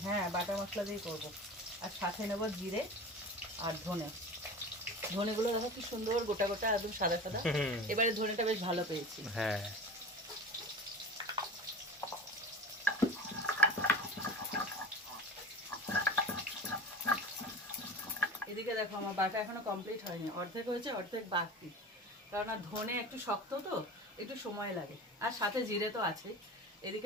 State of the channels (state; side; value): normal; both; correlation 0.34